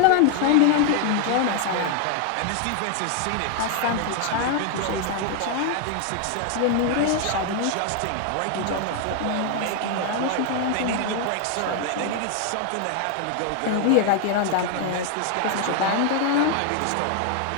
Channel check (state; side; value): different; both; correlation 0.00